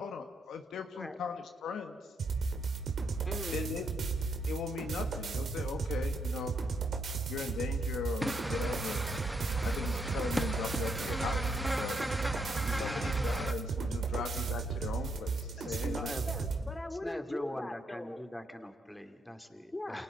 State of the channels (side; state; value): both; normal; correlation 0.77